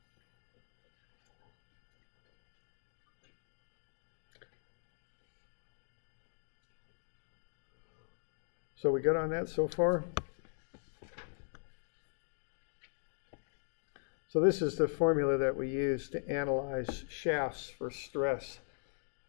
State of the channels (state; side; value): silent; right; digital silence